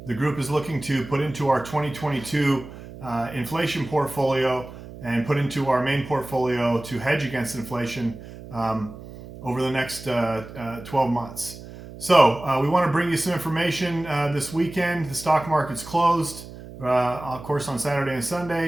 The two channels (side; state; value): right; noise; hum, 15 dB below the sound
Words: group is looking to put into our 2022 inflation portfolio and put into our main portfolio to hedge against inflation over the next 12 months. So we want to bring you some information this weekend. The stock market's closed, of course, on Saturday and